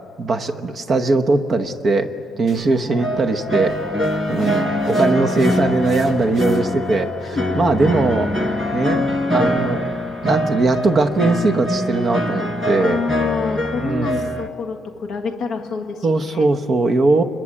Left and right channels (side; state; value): both; normal; correlation 0.79